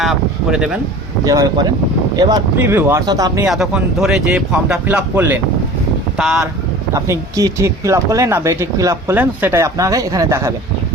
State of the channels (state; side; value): normal; both; correlation 0.41